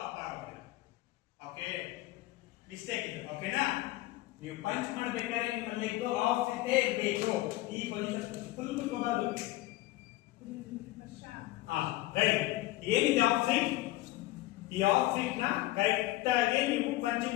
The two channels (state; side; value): quieter; right; 17.8 dB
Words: ಅಪ್ಪ ಆಗಲ್ಲ. ಓಕೆ ಮಿಸ್ಟೇಕ್ ಇದೆ. ಓಕೆನಾ? ನೀವು ಪಂಚ್ ಮಾಡಬೇಕಾದ್ರೆ ನಿಮ್ಮ ಲೆಗ್ ಆಫ್ ಇದ್ದೇ ಇರಬೇಕು. ಈ ಪೊಸಿಷನ್ ಫುಲ್ ತಗೋಬಾರ್ದು. ರೆಡಿ. ಏನಿದೆ ಆಫ್ ಸೈಡ್? ಈ ಆಫ್ ಸೈಡ್ ನ ಕರೆಕ್ಟ್ ಆಗಿ ನೀವು ಪಂಚಿಂಗ್